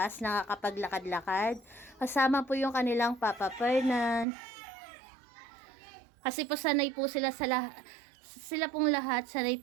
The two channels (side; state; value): left; drops out; at 4.2 s